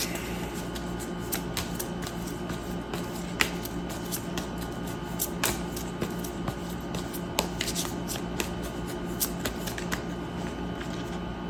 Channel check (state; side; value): identical; both; correlation 1.00